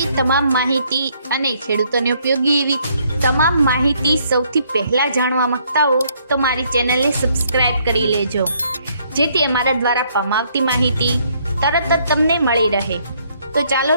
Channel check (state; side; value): inverted; both; correlation -0.68